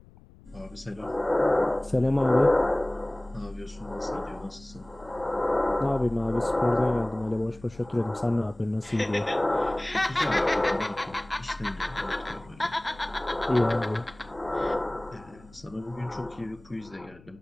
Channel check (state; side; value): noise; left; rumble, 24 dB below the sound